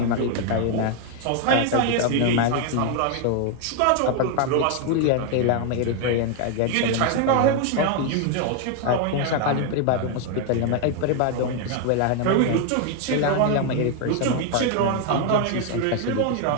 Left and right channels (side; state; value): both; different; correlation 0.01